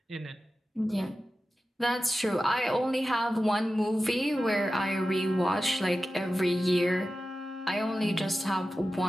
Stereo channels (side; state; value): both; normal; correlation 0.93